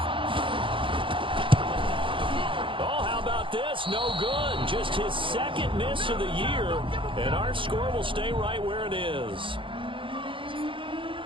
Oh, how about this? No good. Just his 2nd miss of the year. And our score will stay right where it is.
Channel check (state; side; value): late; left; 0.25 ms